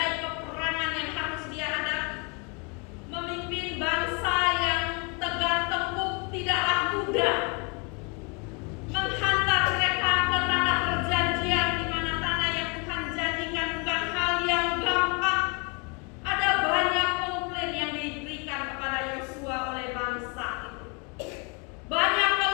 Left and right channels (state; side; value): quieter; right; 32.5 dB